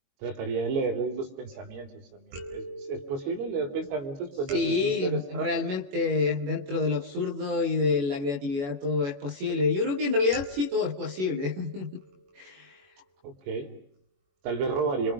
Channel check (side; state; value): left; late; 21 ms